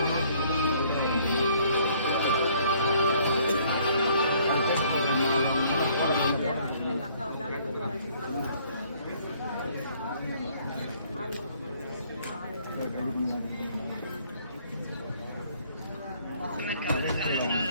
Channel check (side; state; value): both; inverted; correlation -0.61